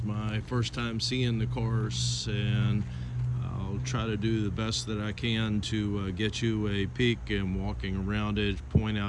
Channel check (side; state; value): both; identical; correlation 1.00